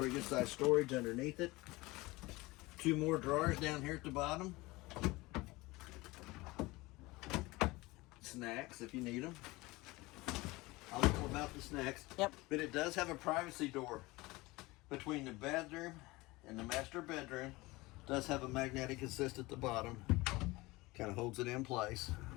good sized storage underneath it. 2 more drawers down here at the bottom. Snacks if you need them. I'll know about the snacks. Yep. But it does have a privacy door between the bedroom and the master bedroom. It does have a magnetic assist at the bottom. Kind of holds it in place.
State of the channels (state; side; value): quieter; right; 21.5 dB